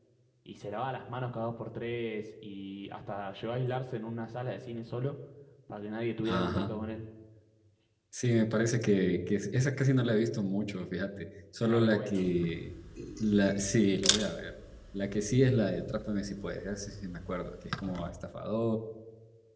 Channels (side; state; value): both; identical; correlation 1.00